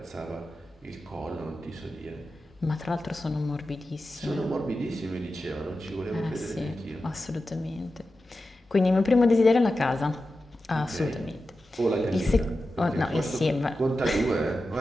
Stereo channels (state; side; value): normal; both; correlation 0.92